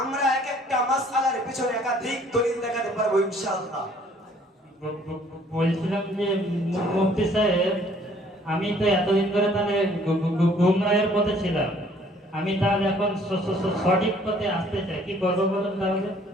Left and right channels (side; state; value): both; normal; correlation 0.59